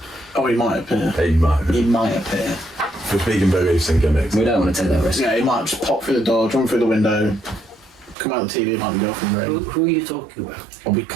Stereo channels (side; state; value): left; drops out; at 8.2 s